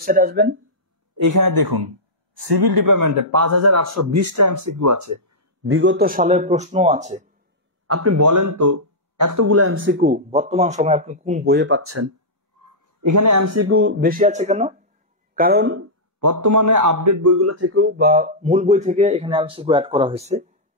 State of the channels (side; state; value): both; normal; correlation -0.11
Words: আসবেন, এখানে দেখুন সিভিল ডিপার্টমেন্টে 5820টা এমসিকিউ আছে, বিগত সালের প্রশ্ন আছে। আপনি বলেন তো এতগুলো এমসিকিউ বর্তমান সময় আপনি কোন বইয়ে পাচ্ছেন? এখানে এমসিকিউ বেশি আছে কেন? কারণ বর্তমানে আপডেট বইগুলো থেকেও বা মূল বই থেকে এখানে এমসিকিউ অ্যাড করা হয়েছে।